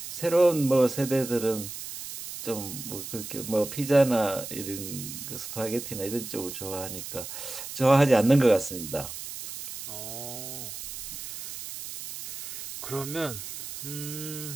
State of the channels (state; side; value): noise; right; hiss, 9 dB below the sound